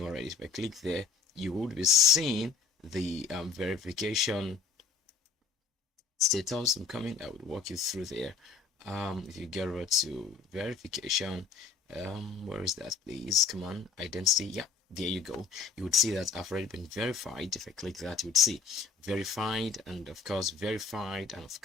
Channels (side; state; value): right; quieter; 5.4 dB